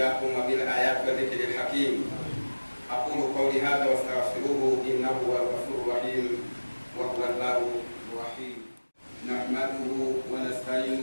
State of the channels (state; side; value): inverted; both; correlation -1.00